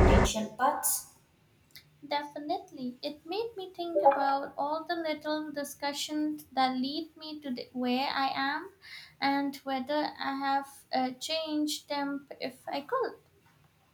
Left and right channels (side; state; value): both; identical; correlation 1.00